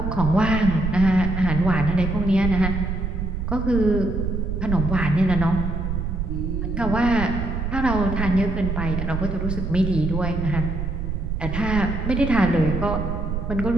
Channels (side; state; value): right; noise; rumble, 2 dB below the sound